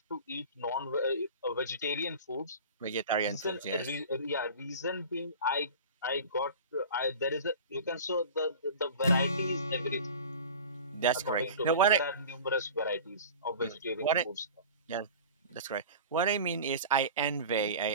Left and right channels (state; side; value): inverted; both; correlation -0.37